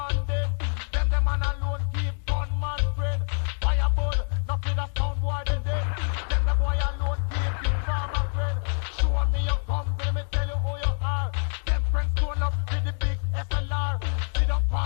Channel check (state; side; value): silent; right; digital silence